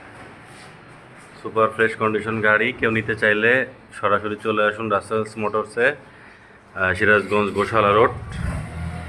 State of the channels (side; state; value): both; identical; correlation 1.00